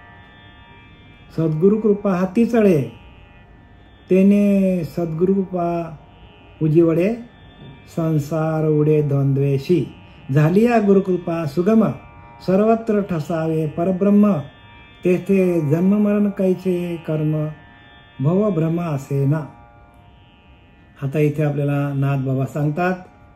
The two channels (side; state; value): both; identical; correlation 1.00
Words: सद्गुरु कृपा हाती चढे, तेने सद्गुरु कृपा उजिवडे, संसार उडे द्वंद्वेशी. झालिया गुरुकृपा सुगम, सर्वत्र ठसावे परब्रह्म, तेथे जन्म मरण कैचे कर्म, भव भ्रम असे ना. आता इथे आपल्याला नाथ बाबा सांगतात